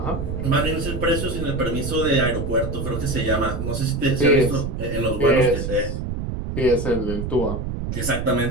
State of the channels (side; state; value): right; noise; rumble, 4 dB below the sound